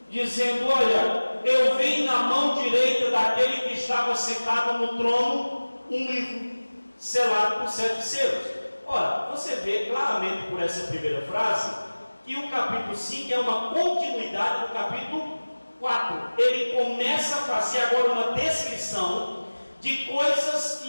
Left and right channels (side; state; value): both; inverted; correlation -1.00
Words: dizendo: olha, eu vi na mão direita daquele que estava sentado no trono um livro selado por 7 selos. Ora, você vê claramente por essa primeira frase que o capítulo 5 é uma continuidade do capítulo 4. Ele começa a fazer agora uma descrição de coisas